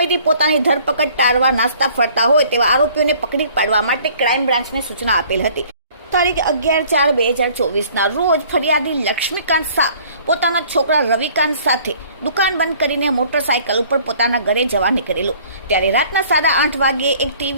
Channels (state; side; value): inverted; both; correlation -0.55